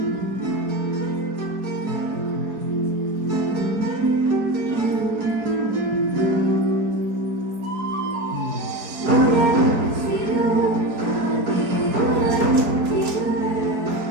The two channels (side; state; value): left; late; 4.5 ms